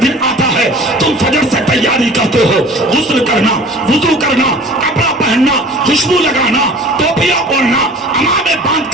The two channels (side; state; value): both; normal; correlation 0.45